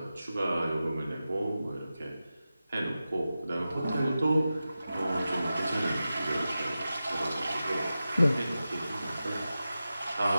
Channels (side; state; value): both; inverted; correlation -0.93